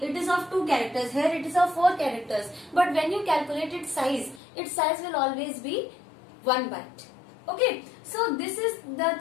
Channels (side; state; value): right; drops out; at 4.4 s